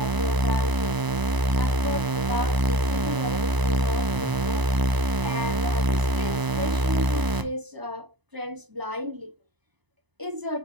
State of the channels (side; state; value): left; late; 1.0 ms